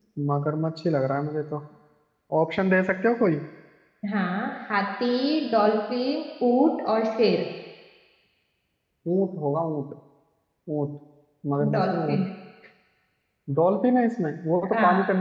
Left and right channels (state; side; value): identical; both; correlation 1.00